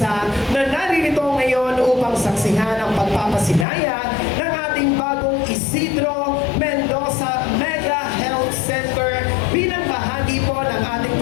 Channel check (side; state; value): right; drops out; at 3.7 s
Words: na naririto ngayon upang saksihan ang pagpapasinaya ng ating bagong Isidro Mendoza Mega Health Center bilang bahagi po ng ating